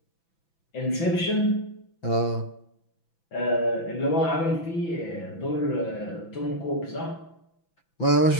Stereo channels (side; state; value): right; late; 6.0 ms